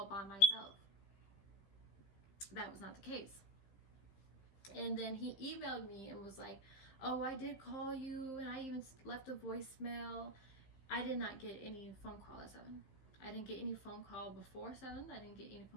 by myself. That was not the case. And then he emailed me and was like, oh, I did call you, and I even left a voicemail. I did not get any phone call at 7. I didn't get any phone call before 7. I didn't get any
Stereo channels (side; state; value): right; late; 15 ms